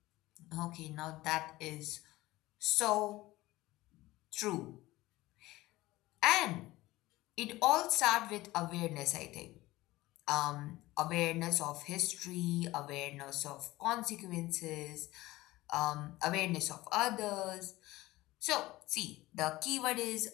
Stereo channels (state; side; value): quieter; right; 18.4 dB